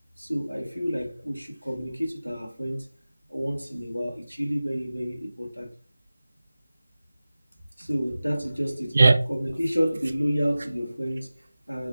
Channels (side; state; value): both; inverted; correlation -0.96